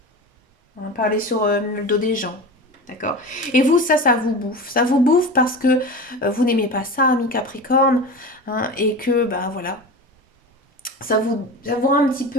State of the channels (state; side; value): normal; both; correlation 0.29